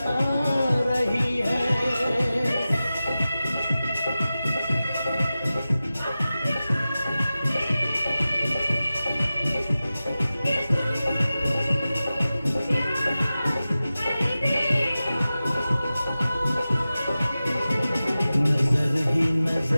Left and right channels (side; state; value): both; inverted; correlation -0.95